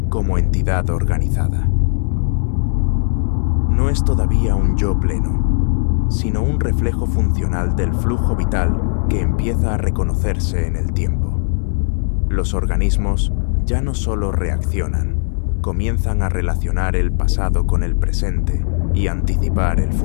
como entidad organizada. No es todavía un yo pleno, sino un reflejo funcional del flujo vital que empieza a reconocerse en el tiempo. Los organismos ya no solo reaccionan, comienzan a relacionar el pasado con el presente y anticipar el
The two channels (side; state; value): right; silent; 68 dB below the other